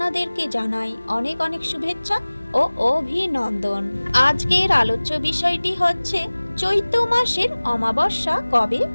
জানাই অনেক অনেক শুভেচ্ছা ও অভিনন্দন। আজকের আলোচ্য বিষয়টি হচ্ছে চৈত্র মাসের অমাবস্যা কবে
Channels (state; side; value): inverted; both; correlation -1.00